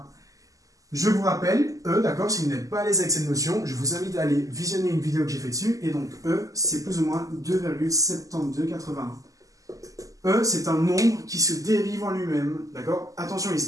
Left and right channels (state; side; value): late; left; 0.17 ms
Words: Je vous rappelle, e, d'accord, si vous n'êtes pas à l'aise avec cette notion, je vous invite à aller visionner une vidéo que j'ai fait dessus, et donc e, c'est plus ou moins 2,7281. E, c'est un nombre qui se dérive en lui-même, d'accord? Attention, il